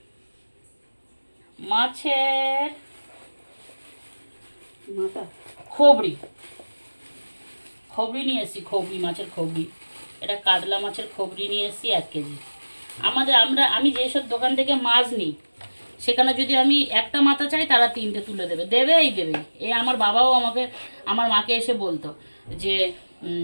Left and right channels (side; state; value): both; inverted; correlation -1.00